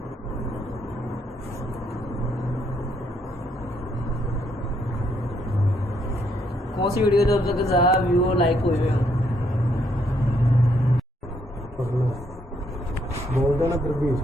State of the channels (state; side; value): normal; both; correlation 0.72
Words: कौन सी वीडियो जब तक ज़्यादा व्यू लाइक हुए हैं बोल देना फिर भी